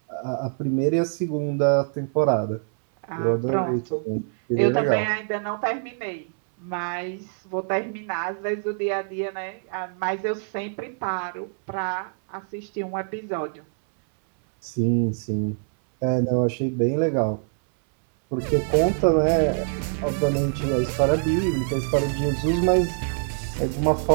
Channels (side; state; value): left; silent; 62 dB below the other